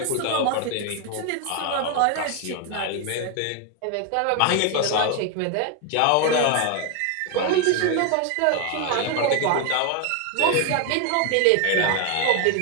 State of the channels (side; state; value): both; different; correlation 0.01